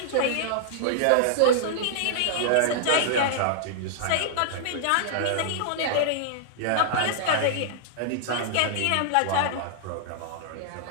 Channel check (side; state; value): both; different; correlation -0.01